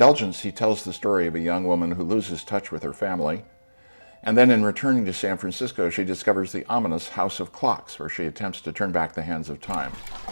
he tells the story of a young woman who loses touch with her family, and then in returning to San Francisco, she discovers the ominous House of Clocks, where she attempts to turn back the hands of time.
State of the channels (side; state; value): both; inverted; correlation -1.00